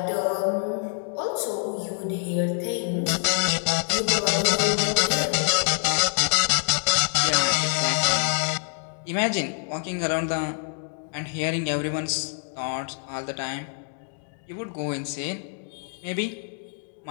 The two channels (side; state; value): right; silent; 61 dB below the other